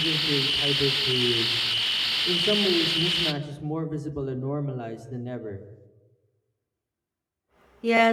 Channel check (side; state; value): both; identical; correlation 1.00